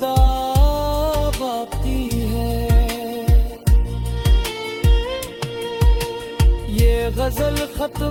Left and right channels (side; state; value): both; identical; correlation 1.00